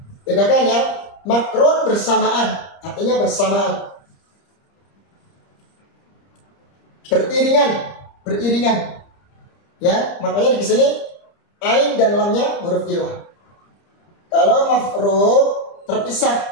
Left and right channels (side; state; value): right; late; 30 ms